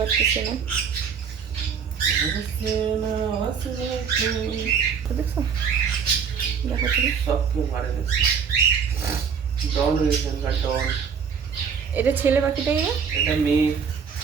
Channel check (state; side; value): quieter; left; 6.7 dB